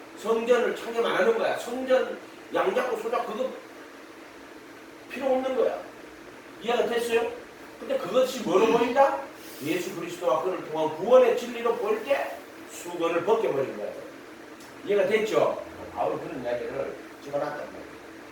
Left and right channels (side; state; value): both; identical; correlation 1.00